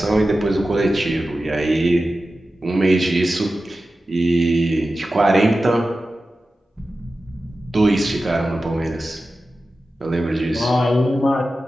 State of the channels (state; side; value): normal; both; correlation 0.94